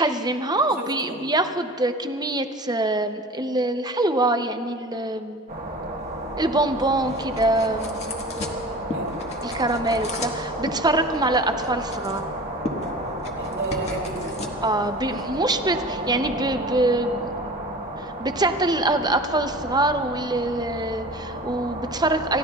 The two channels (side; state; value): both; normal; correlation 0.38